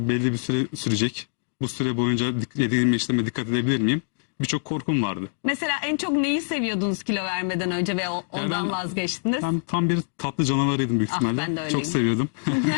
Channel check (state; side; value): silent; right; digital silence